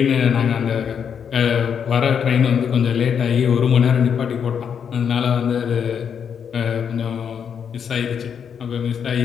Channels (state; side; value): quieter; right; 7.5 dB